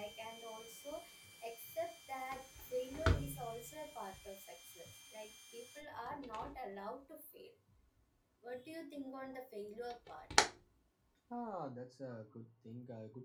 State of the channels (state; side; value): identical; both; correlation 1.00